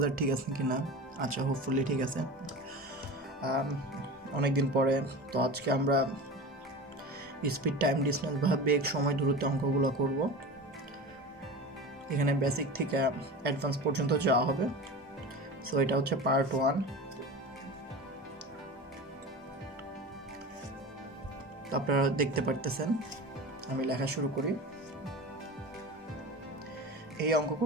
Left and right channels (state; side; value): normal; both; correlation 0.31